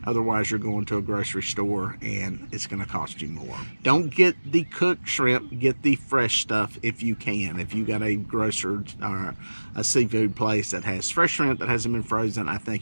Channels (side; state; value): both; inverted; correlation -1.00